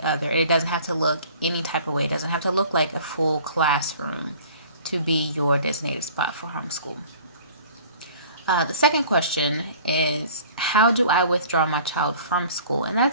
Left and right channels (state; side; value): inverted; both; correlation -0.49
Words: other. It doesn't have to look any type of way. It doesn't have to look like a full classroom to be your designated spot for homeschool. The second question is, how do I withdraw my child from school? And